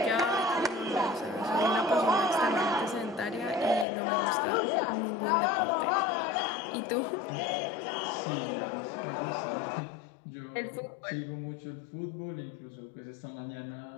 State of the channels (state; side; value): drops out; right; at 3.9 s